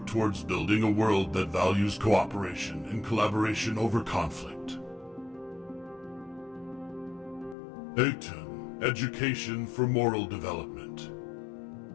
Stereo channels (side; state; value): right; drops out; at 7.6 s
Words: towards building a world that values cooperation and collaboration over conflict. 18. Education for moral development.